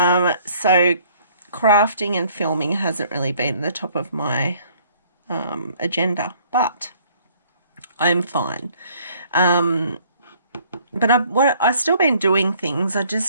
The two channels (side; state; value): both; inverted; correlation -0.60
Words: crafting and filming hasn't really been the top of my agenda, but I'm fine. But I've still been doing things. I